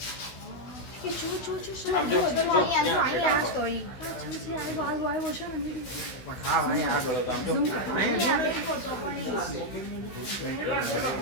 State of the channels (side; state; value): right; late; 15 ms